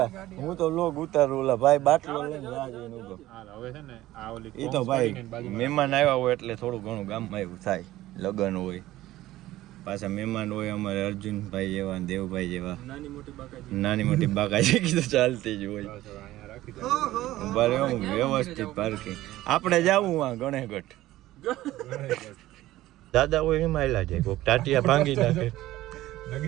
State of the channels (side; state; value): left; quieter; 15.7 dB